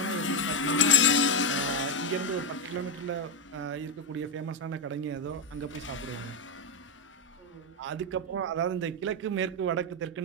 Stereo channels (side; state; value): both; normal; correlation 0.06